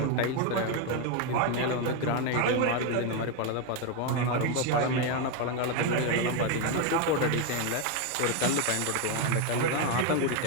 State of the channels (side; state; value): both; different; correlation 0.02